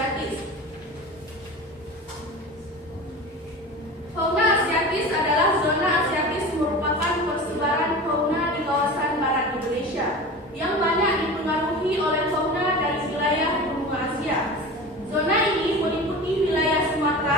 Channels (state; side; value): normal; both; correlation 0.33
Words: Fauna asiatis adalah zona asiatis merupakan persebaran fauna di kawasan barat Indonesia yang banyak dipengaruhi oleh fauna dari wilayah benua Asia. Zona ini meliputi wilayah